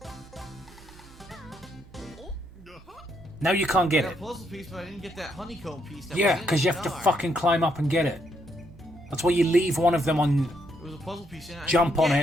Now you can't I get got it. a puzzle piece, but I didn't get that honeycomb piece. That Yeah, went in because the you have to star. fucking climb up and get it. That's why you leave one of them on There was a puzzle piece in it. I Jump didn't on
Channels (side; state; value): right; noise; hum, 22 dB below the sound